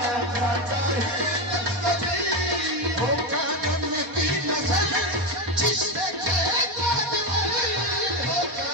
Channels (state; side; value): late; left; 4.2 ms